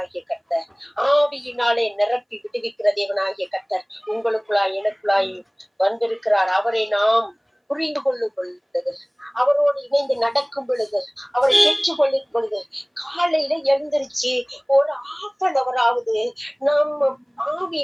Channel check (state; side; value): identical; both; correlation 1.00